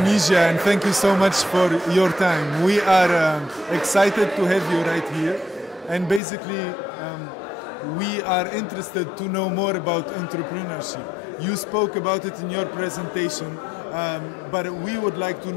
and thank you so much for your time. We are excited to have you right here, and basically we are interested to know more about entrepreneurship. You spoke about it in your presentation, but we would like to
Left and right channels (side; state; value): right; drops out; at 6.2 s